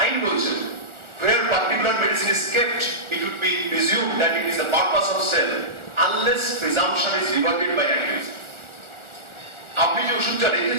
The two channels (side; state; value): left; late; 1.4 ms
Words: আইন বলছে where particular medicine is kept, it would be presumed that it is the purpose of sale unless presumption is rebutted by accused. আপনি যে ওষুধটা